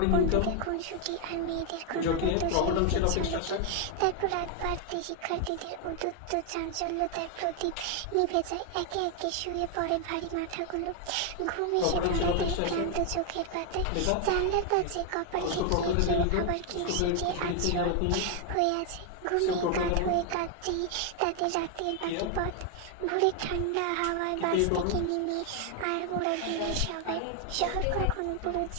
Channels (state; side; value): different; both; correlation 0.00